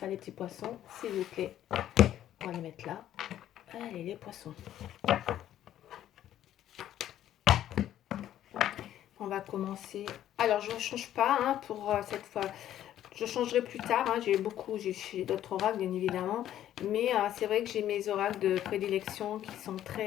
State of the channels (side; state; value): right; quieter; 11.8 dB